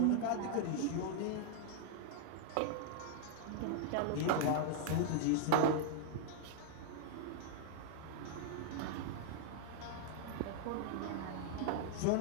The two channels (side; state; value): both; different; correlation -0.01